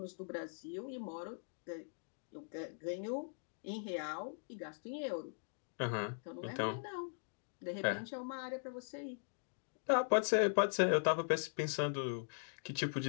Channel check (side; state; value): right; silent; digital silence